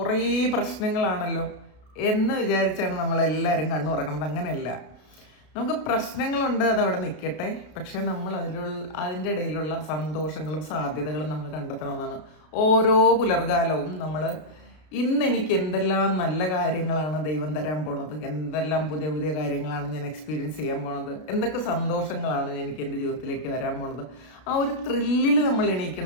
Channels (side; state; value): right; late; 33 ms